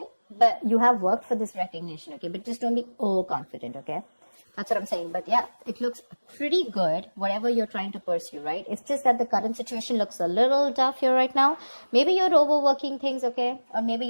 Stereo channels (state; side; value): inverted; both; correlation -1.00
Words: But you have worked for this recognition, okay? But just don't be overconfident, okay? That's what I'm saying. But yeah, it looks pretty good, whatever you're trying to pursue, right? It's just that the current situation looks a little tough here right now. Maybe you're overworking things, okay? Or maybe